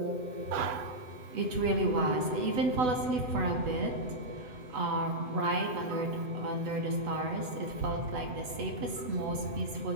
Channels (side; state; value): left; late; 8.0 ms